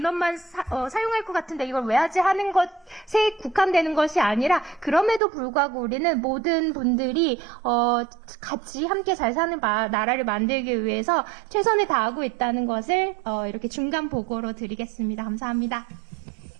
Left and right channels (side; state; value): left; drops out; at 5.2 s